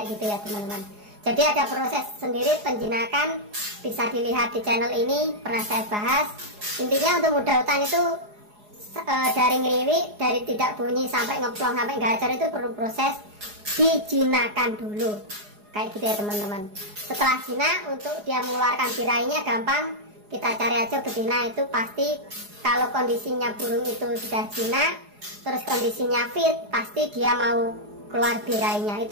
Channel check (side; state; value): left; late; 4.8 ms